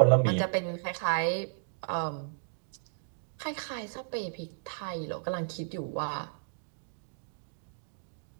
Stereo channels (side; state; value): left; silent; digital silence